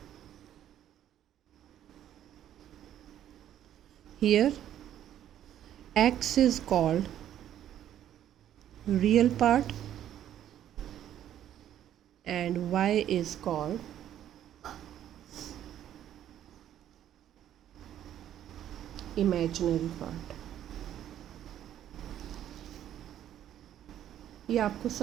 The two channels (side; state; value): left; quieter; 11.1 dB